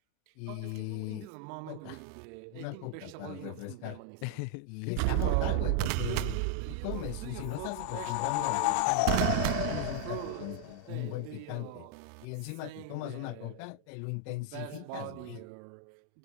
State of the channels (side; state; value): both; different; correlation 0.00